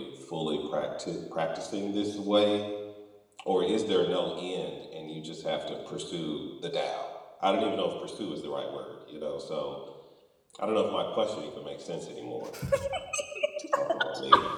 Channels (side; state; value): both; identical; correlation 1.00